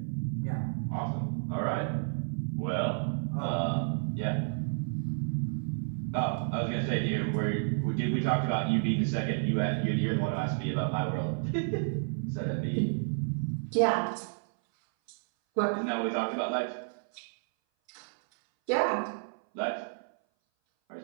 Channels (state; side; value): silent; left; 57 dB below the other